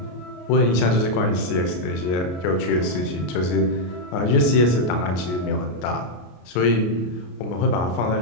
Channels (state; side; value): late; right; 33 ms